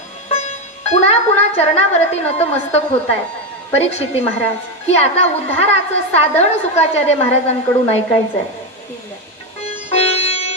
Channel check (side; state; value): both; normal; correlation 0.11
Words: पुन्हा पुन्हा चरणावरती नतमस्तक होत आहे परीक्षिती महाराज की आता उद्धाराचं साधन शुकाचार्य महाराजांकडून ऐकायचंय.